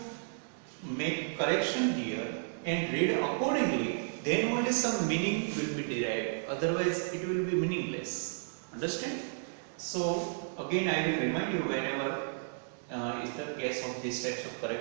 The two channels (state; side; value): silent; left; digital silence